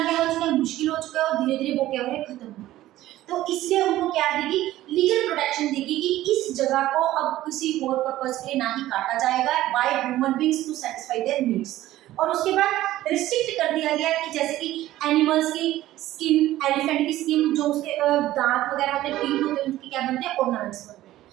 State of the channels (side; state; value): left; quieter; 15.0 dB